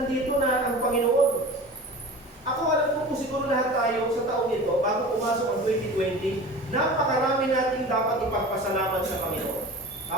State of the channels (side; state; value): both; normal; correlation 0.36